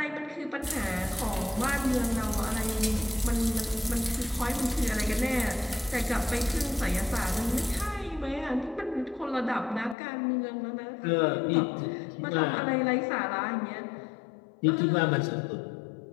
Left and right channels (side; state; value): right; drops out; at 10.0 s